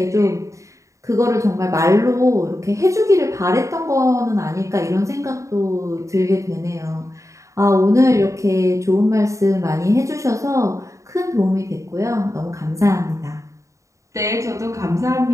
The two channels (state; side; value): late; left; 0.15 ms